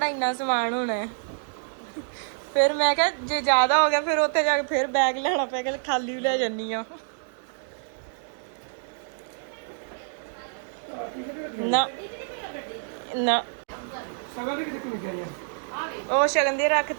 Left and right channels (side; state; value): left; silent; digital silence